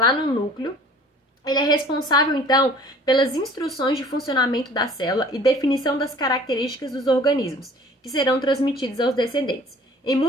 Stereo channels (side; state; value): both; normal; correlation 0.50